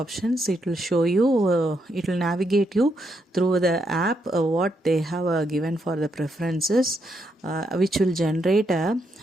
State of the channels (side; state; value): both; normal; correlation 0.79